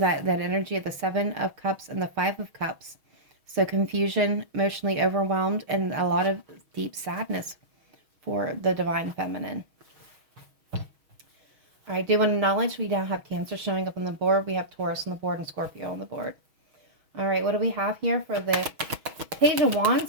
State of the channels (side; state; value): left; late; 6.3 ms